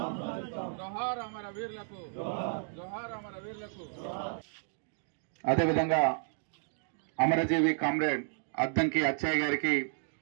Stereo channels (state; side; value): silent; left; digital silence